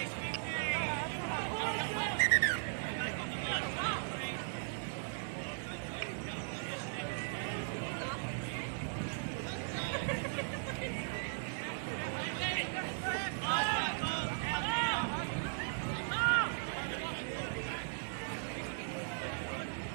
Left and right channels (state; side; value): silent; left; digital silence